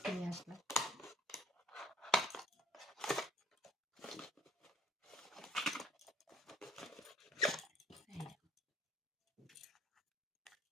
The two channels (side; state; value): both; normal; correlation 0.59